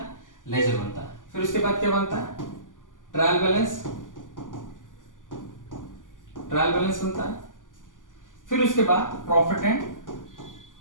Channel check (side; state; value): right; late; 0.88 ms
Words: लेजर बनता है। फिर उसके बाद क्या बनता है? ट्रायल बैलेंस बनता है। फिर उसके बाद प्रॉफिट एंड